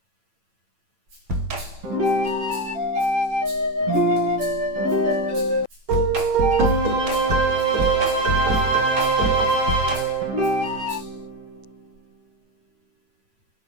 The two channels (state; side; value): late; left; 8.9 ms